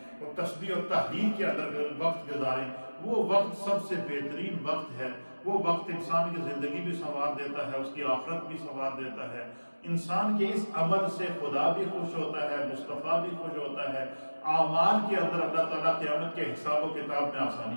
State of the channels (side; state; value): both; inverted; correlation -1.00